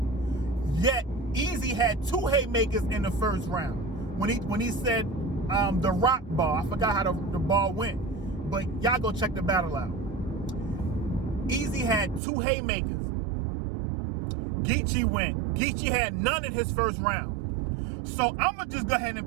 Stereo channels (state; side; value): drops out; left; at 12.2 s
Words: Yet, Eazy had 2 haymakers in the first round. When he said the rock ball, I forgot how the ball went. But y'all go check the battle out. Eazy had 2 haymakers. Geechi had none in his first round. So I'm going to just go ahead